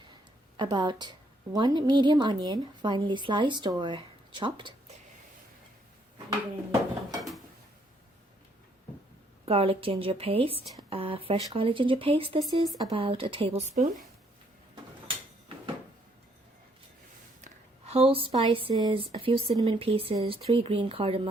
about 1 medium onion, finely sliced or chopped. You're going to need garlic ginger paste, fresh garlic ginger paste. This is about a tablespoon. Whole spices, a few cinnamon pieces, 3 green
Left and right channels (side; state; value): both; normal; correlation 0.69